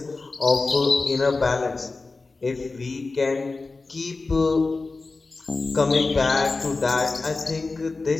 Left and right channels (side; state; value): right; quieter; 3.7 dB